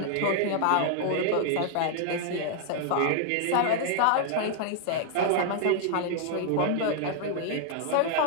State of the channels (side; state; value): both; different; correlation 0.00